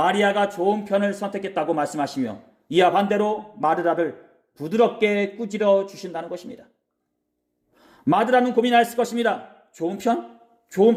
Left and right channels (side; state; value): both; identical; correlation 1.00